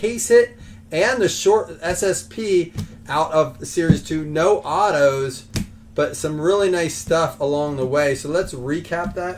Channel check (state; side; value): identical; both; correlation 1.00